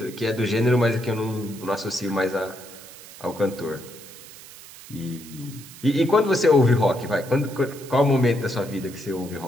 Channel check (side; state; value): right; noise; hiss, 17 dB below the sound